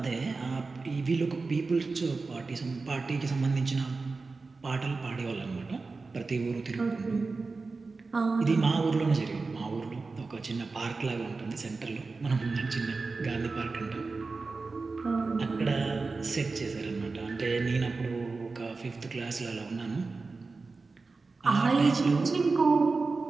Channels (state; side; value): quieter; left; 4.0 dB